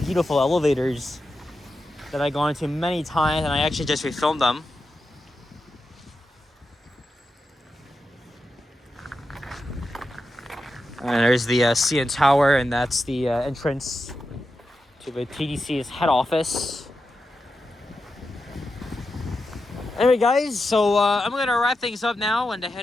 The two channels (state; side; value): normal; both; correlation 0.89